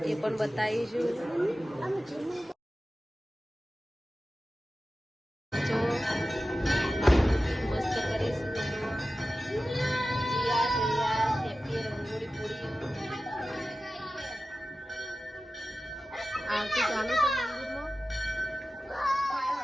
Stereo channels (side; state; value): both; normal; correlation 0.95